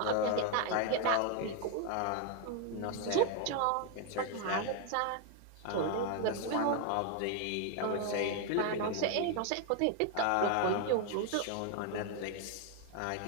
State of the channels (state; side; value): different; both; correlation 0.01